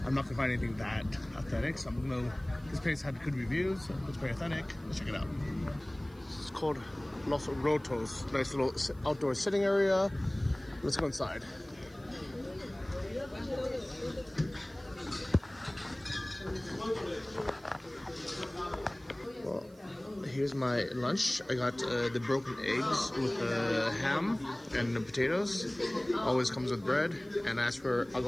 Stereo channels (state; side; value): noise; right; hiss, 29 dB below the sound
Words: I'm not gonna find anything that authentic. So I'm gonna, this place had good reviews, it's pretty authentic. Let's check it out. It's called Los Rotos. Nice little outdoor sitting area. Let's go inside. Well, here's my lunch. I got the broken eggs with ham and the potatoes. Always comes with bread. And I asked for